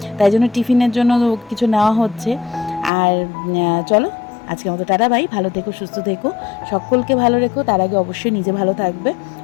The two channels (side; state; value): right; drops out; at 2.9 s